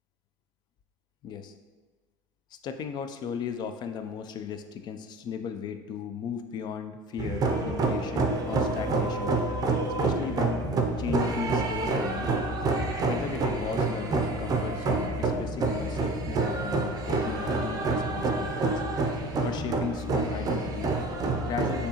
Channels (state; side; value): normal; both; correlation 0.41